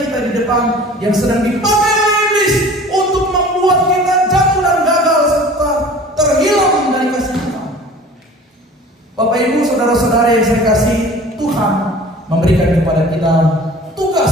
kita di depan, yang sedang dipakai oleh iblis untuk membuat kita jatuh dan gagal serta terhilang dari kasih Tuhan. Bapak Ibu, saudara-saudara yang saya kasih, Tuhan memberikan kepada kita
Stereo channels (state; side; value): normal; both; correlation 0.44